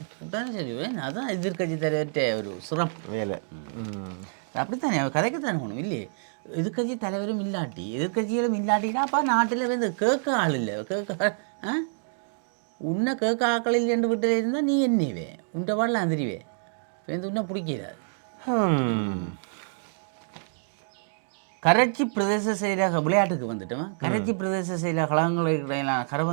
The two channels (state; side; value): silent; left; digital silence